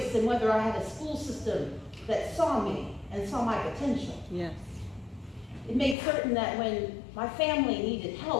in whether I had a school system that saw me and saw my potential. Yes. It made certain that when my family needed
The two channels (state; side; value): drops out; right; at 6.0 s